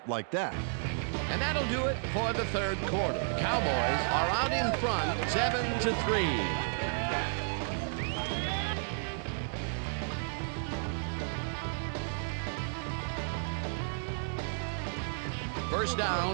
like that. And that'll do it for the third quarter. Cowboys are out in front, 7-3. First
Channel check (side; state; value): left; silent; digital silence